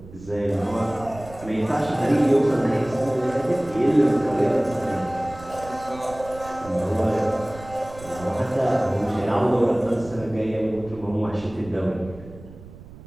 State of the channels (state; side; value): noise; right; rumble, 18 dB below the sound